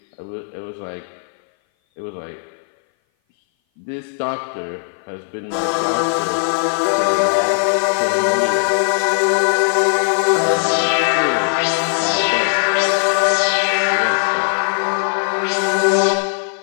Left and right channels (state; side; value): silent; right; 58 dB below the other